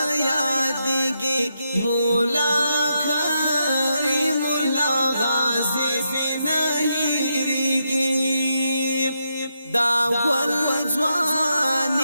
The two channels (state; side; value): inverted; both; correlation -0.82